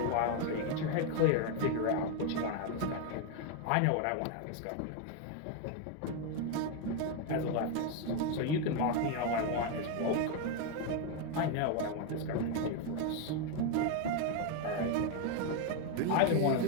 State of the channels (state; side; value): different; both; correlation 0.01